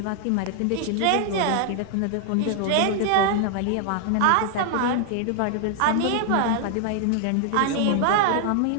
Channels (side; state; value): both; different; correlation 0.00